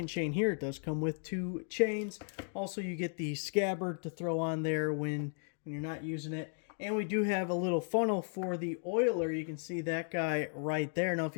chain here. It does come with two chains. Also you get the scabbard to throw on there when you're not using it. And we do have a little funnel for the oiler. You can see that guy right there. Now, if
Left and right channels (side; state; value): right; silent; 54 dB below the other